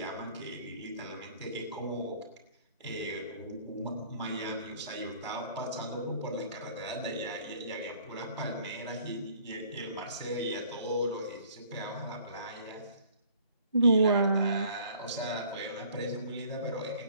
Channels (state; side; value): inverted; both; correlation -0.55